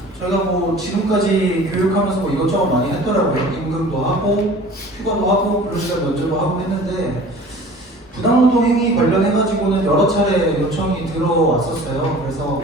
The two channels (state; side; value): normal; both; correlation 0.44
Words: 저희가 지금까지 교육하면서 이것저것 많이 했더라고요. 임금도 하고 휴가도 하고 근로시간 면제도 하고 했는데 부당노동 행위 관련해가지고는 여러 차례 요청이 들어왔었어요. 그래서